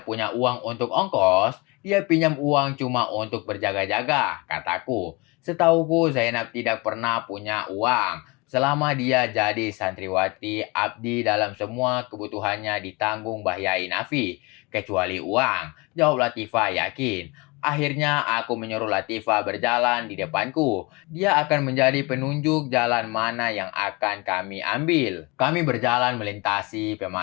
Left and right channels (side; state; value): right; quieter; 26.5 dB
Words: punya uang untuk ongkos, dia pinjam uang cuma untuk berjaga-jaga, kataku. Setauku Zainab tidak pernah punya uang. Selama dia jadi santriwati, abdi dalam semua kebutuhannya ditanggung Mbah Yai Nafi, kecuali uang. Jawab Latifah yakin. Akhirnya aku menyuruh Latifah berjalan di depanku. Dia akan menjadi penunjuk jalan mana yang akan kami ambil. Kami berjalan melintasi